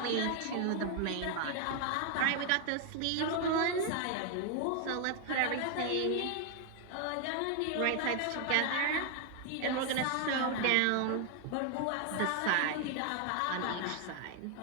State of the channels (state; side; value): different; both; correlation 0.01